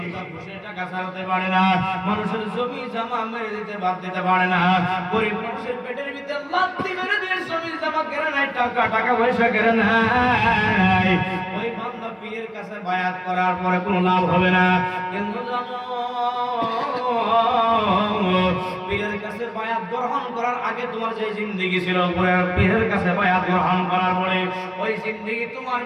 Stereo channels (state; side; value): identical; both; correlation 1.00